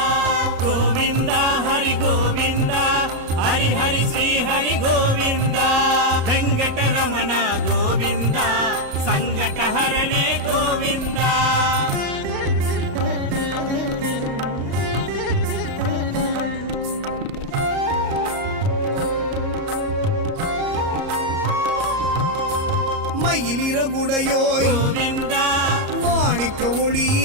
கோவிந்தா ஹரி கோவிந்தா ஹரி ஹரி ஸ்ரீ ஹரி கோவிந்தா வெங்கடரமண கோவிந்தா சங்கடஹரணே கோவிந்தா. மயிலிறகுடையோய் கோவிந்தா மாணிக்க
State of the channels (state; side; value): late; left; 33 ms